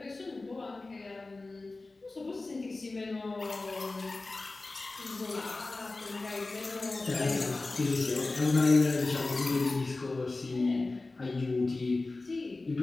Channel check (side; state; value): right; quieter; 3.3 dB